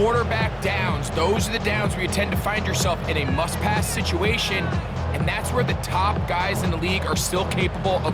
downs. Those are the downs where you tend to find yourself in a must-pass situation, and that's where the top guys in the league are still capable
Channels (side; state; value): both; identical; correlation 1.00